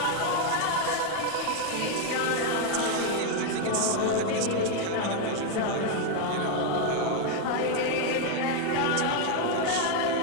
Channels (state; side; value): different; both; correlation 0.01